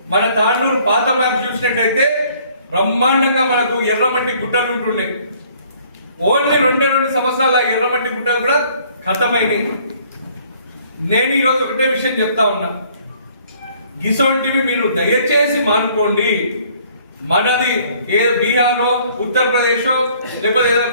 మన తాండూరు పాత మ్యాప్ చూసినట్టయితే బ్రహ్మాండంగా మనకు ఎర్రమట్టి గుట్టలు ఉంటున్నాయి. ఓన్లీ 2 సంవత్సరాల ఎర్రమట్టి గుట్టలు కూడా ఖతమైనవి. నేను ఈరోజు ఒకటే విషయం చెప్తా ఉన్నా, ఇసొంటివి మీరు దయచేసి మానుకోండి. మనది ఏ బీహారో ఉత్తరప్రదేశో లేకపోతే ఏదో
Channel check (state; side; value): inverted; both; correlation -0.59